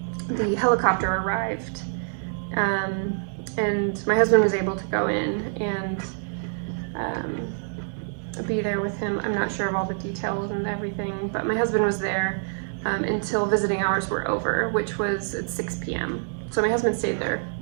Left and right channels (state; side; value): silent; left; digital silence